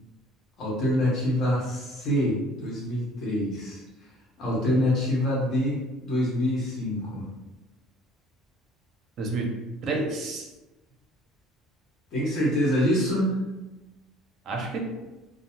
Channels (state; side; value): normal; both; correlation 0.56